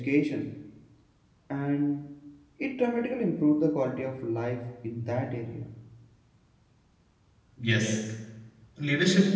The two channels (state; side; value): identical; both; correlation 1.00